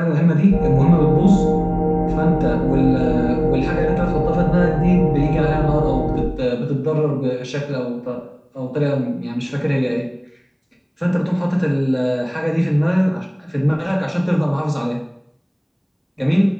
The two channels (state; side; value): identical; both; correlation 1.00